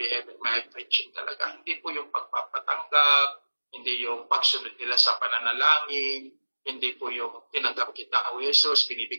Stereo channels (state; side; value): inverted; both; correlation -1.00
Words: may preaching talaga. Hindi po yung pagpapatanggap, hindi yung pagsunod nila sa pananalangin, hindi po yung tinanggap kita, O Jesus,